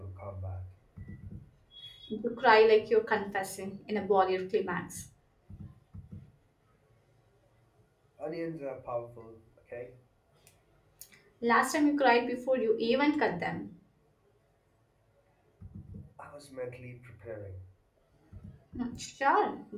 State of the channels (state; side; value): identical; both; correlation 1.00